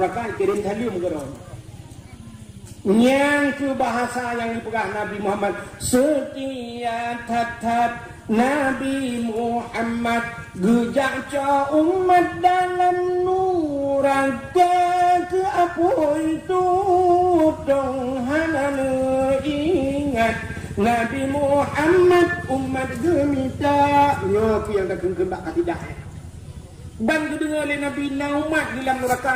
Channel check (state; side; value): identical; both; correlation 1.00